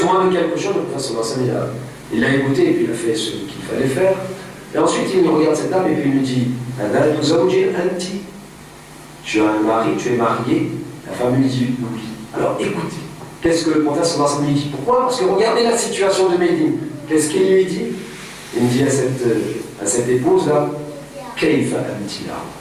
de quelque chose, le prophète sallallahu alayhi wa sallam, il l'a écouté et puis il a fait ce qu'il fallait faire. Et ensuite, il regarde cette dame et puis il lui dit tu as un mari, tu es marié. La femme lui dit oui. Alors écoutez, qu'est-ce que le prophète sallallahu alayhi wa sallam lui dit? Pourquoi? Parce que regardez la situation de Médine. Qu'est-ce qu'il lui dit? Il dit à à cette épouse-là, Kayfa amtila,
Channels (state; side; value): identical; both; correlation 1.00